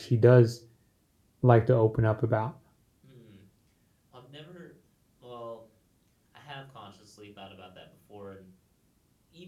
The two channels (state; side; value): identical; both; correlation 1.00